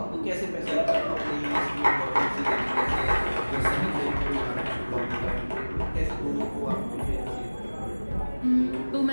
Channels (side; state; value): both; inverted; correlation -1.00